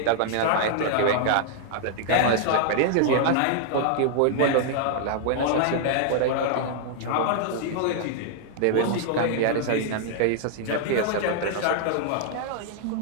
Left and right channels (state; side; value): different; both; correlation -0.01